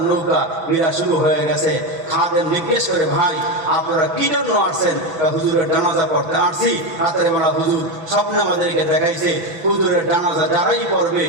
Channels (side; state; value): left; late; 6.0 ms